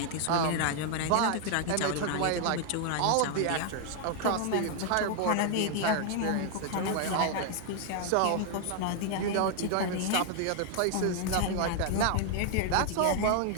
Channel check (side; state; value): both; different; correlation 0.00